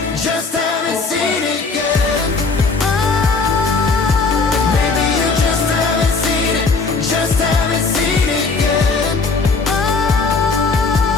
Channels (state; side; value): quieter; right; 4.3 dB